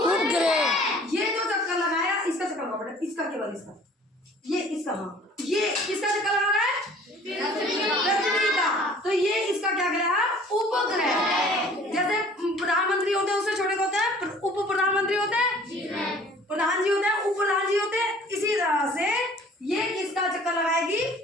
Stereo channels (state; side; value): normal; both; correlation 0.51